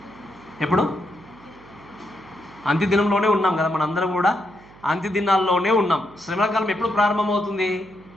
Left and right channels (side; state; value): right; noise; hum, 23 dB below the sound